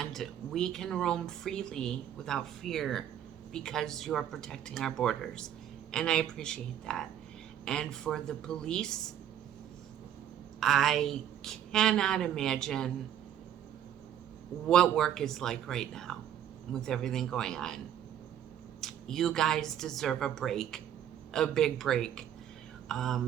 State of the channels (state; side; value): quieter; left; 10.2 dB